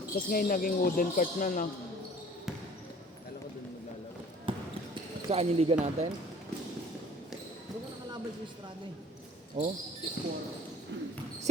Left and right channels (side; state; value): both; normal; correlation 0.51